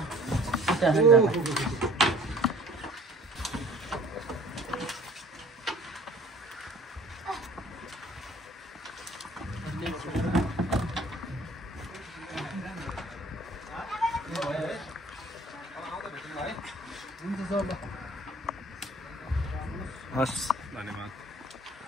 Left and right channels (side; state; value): both; normal; correlation 0.52